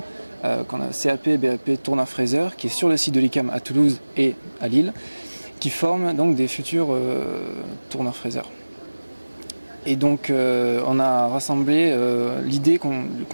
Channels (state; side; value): inverted; both; correlation -1.00